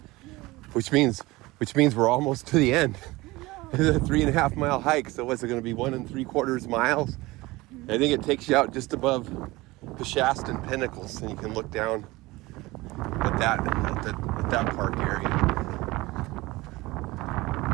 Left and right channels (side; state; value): left; quieter; 20.8 dB